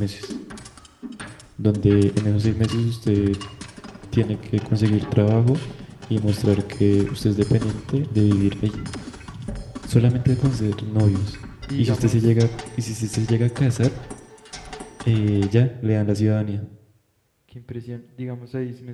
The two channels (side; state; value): both; identical; correlation 1.00